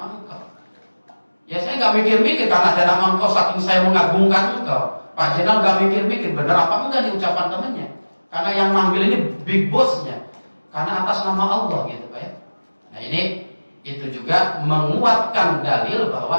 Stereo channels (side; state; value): both; inverted; correlation -1.00